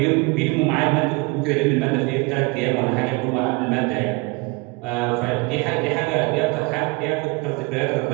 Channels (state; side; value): quieter; left; 27.6 dB